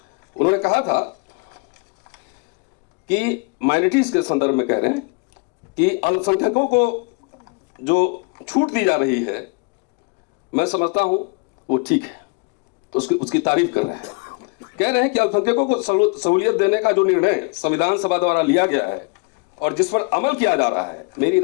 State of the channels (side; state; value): right; quieter; 31.3 dB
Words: उन्होंने कहा था कि माइनॉरिटीज के संदर्भ में कह रहे हैं कि अल्पसंख्यकों को जो छूट दी जा रही है, मैं समझता हूं वो ठीक है, तो उसकी तारीफ कर रहे हैं। कह रहे हैं कि अल्पसंख्यकों को सहूलियत देने का जो निर्णय संविधान सभा द्वारा लिया गया है और जिस पर अमल किया जा रहा है, मेरी